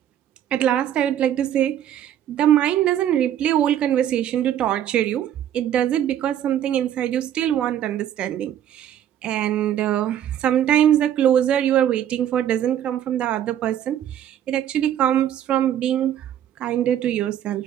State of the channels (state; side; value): quieter; left; 10.8 dB